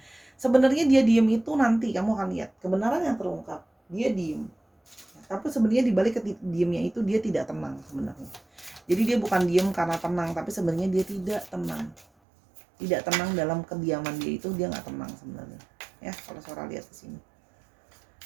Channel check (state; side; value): drops out; left; at 12.1 s